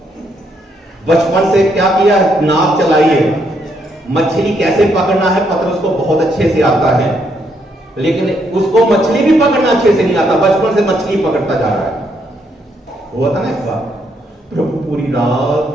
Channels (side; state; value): both; normal; correlation 0.74